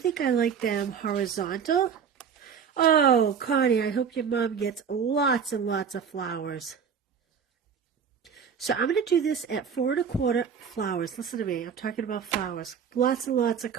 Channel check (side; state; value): left; quieter; 7.0 dB